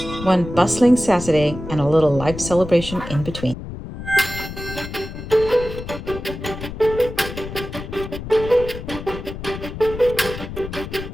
1 bustling Saturday, and a little life celebration in between.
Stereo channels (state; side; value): noise; left; rumble, 10 dB below the sound